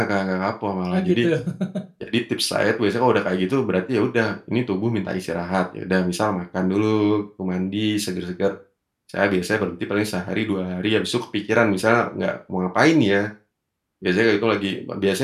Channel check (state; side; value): identical; both; correlation 1.00